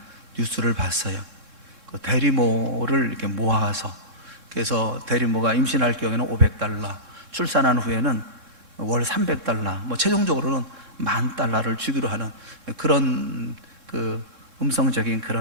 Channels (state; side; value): late; left; 3.7 ms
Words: 뉴스를 봤어요. 그 대리모를 이렇게 모아서 그래서 대리모가 임신할 경우에는 $500, 출산한 후에는 월 $300, 최종적으로는 $10,000를 주기로 하는 그런 그 음성적인